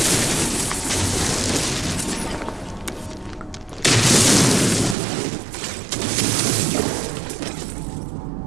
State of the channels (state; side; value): drops out; left; at 5.0 s